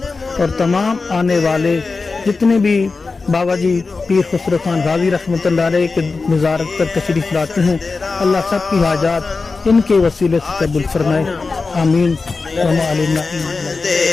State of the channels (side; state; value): right; quieter; 4.1 dB